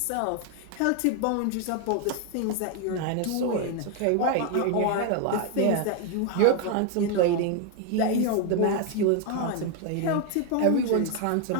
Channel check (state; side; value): different; both; correlation 0.01